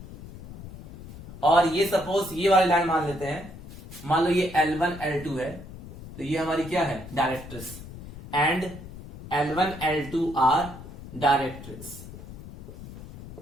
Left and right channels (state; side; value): noise; left; rumble, 14 dB below the sound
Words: और ये सपोज ये वाली लाइन मान लेते हैं, मान लो ये L1 L2 है, तो ये हमारी क्या है? Directrix. And L1 L2 are directrix.